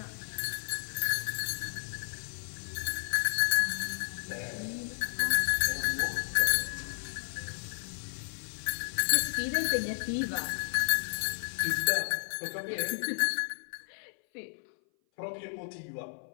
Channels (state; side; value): silent; right; 56 dB below the other